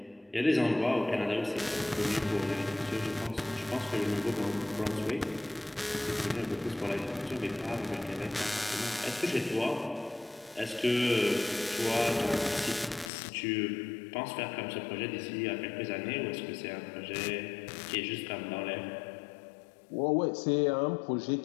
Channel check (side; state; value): right; drops out; at 13.1 s